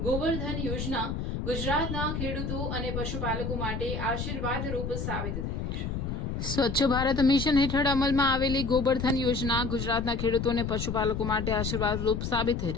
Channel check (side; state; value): left; noise; rumble, 3 dB below the sound